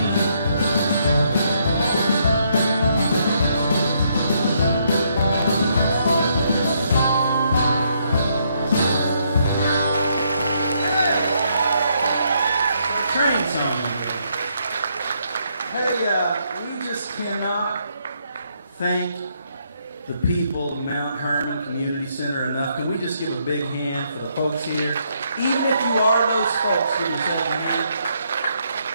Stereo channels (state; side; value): inverted; both; correlation -0.74